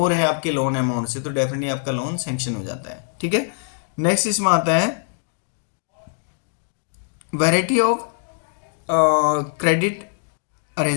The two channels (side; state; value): right; silent; digital silence